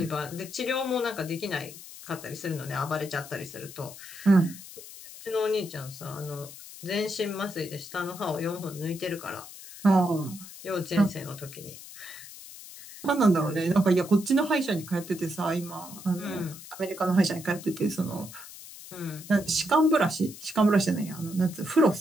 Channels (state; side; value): noise; left; hiss, 15 dB below the sound